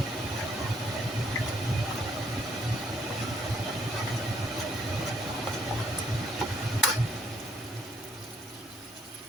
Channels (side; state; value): both; normal; correlation 0.68